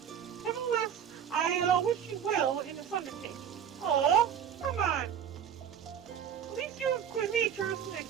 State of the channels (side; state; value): left; quieter; 8.5 dB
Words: Nevertheless, I wish you well in this undertaking. Aw, come on. At least your nature isn't